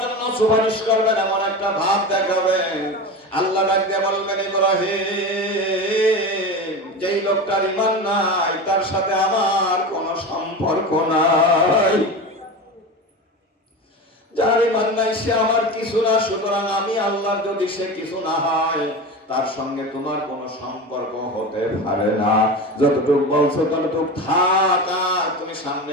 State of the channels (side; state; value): both; normal; correlation 0.27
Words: জন্য সুপারিশ করবেন, এমন একটা ভাব দেখাবেন। আল্লাহ ডাক দিয়ে বলবেন, ইব্রাহিম, যেই লোকটার ঈমান নাই তার সাথে আমার কোনো সম্পর্ক নাই। যার ঈমান নাই সে আমার কিছু না, সুতরাং আমি আল্লাহর যদি সে কিছু না হয় তার সঙ্গে তোমার কোনো সম্পর্ক হতে পারে না। যতটুকু বলছো ততটুকু থাক, তুমি